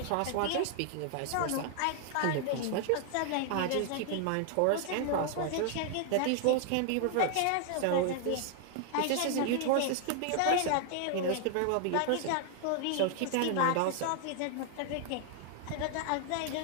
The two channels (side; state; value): both; different; correlation 0.00